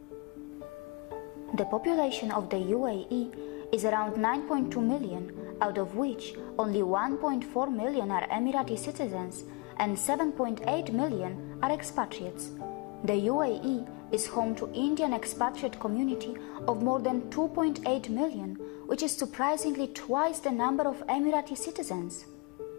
The population of the UAE is around 9.2 million, out of which only 1.4 million are Emirati citizens and 7.8 million are expatriates. The UAE is home to Indian expatriate community of more than 2.8 million, which is surprisingly twice the number of Emirati citizens.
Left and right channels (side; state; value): right; quieter; 28.2 dB